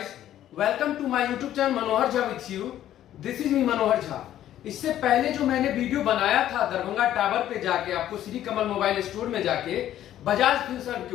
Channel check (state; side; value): quieter; right; 12.1 dB